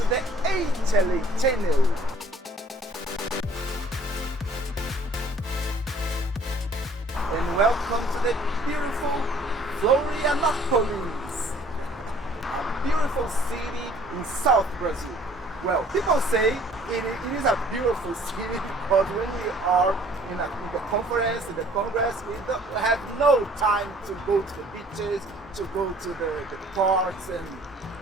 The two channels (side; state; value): both; normal; correlation 0.55